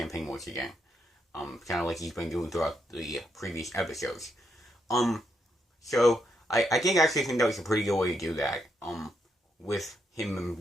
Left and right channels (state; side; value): normal; both; correlation 0.79